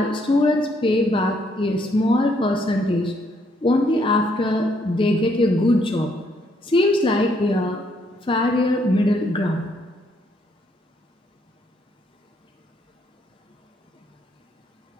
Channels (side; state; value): both; normal; correlation 0.71